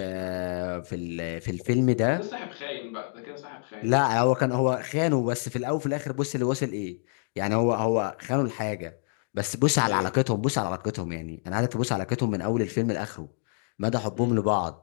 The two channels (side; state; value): right; silent; digital silence